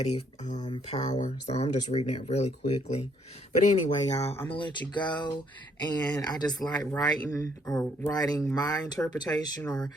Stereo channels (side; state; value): both; normal; correlation 0.68